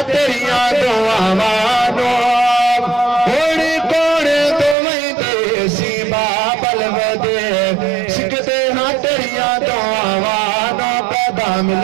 تیریاں دعوانو ہوڑی کوڑ تو وہی دیسی بابل ودے سکھ دے ہاں تیریاں دعوانو پیدا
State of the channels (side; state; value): left; drops out; at 4.8 s